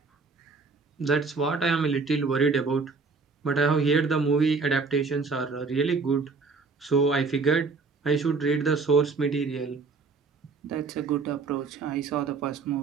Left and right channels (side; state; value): left; quieter; 4.4 dB